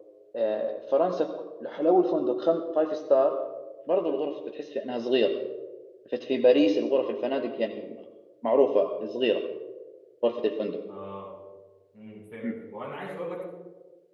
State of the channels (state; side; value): identical; both; correlation 1.00